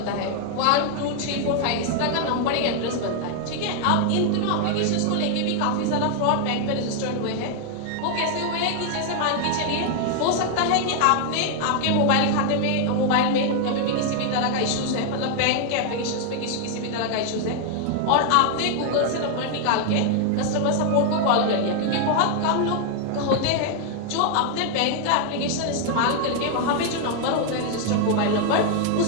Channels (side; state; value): both; different; correlation 0.00